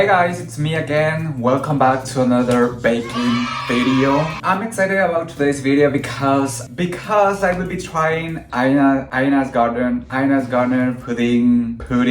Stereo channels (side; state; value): both; identical; correlation 1.00